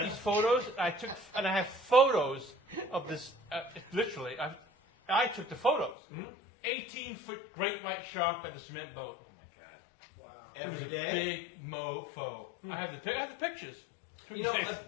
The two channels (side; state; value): right; drops out; at 6.0 s